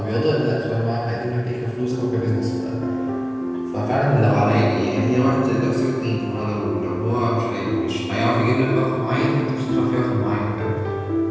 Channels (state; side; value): identical; both; correlation 1.00